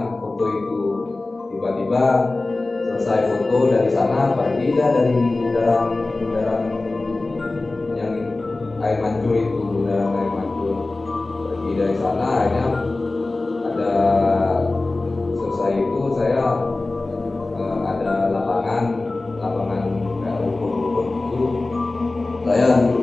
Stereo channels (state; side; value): quieter; right; 3.2 dB